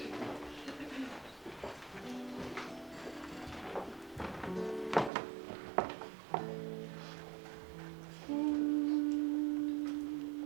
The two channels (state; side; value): drops out; left; at 5.1 s